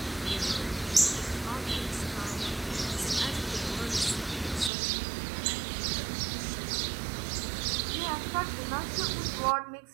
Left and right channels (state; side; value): drops out; left; at 4.7 s